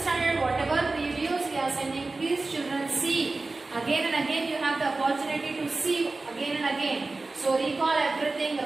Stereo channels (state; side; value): quieter; left; 3.4 dB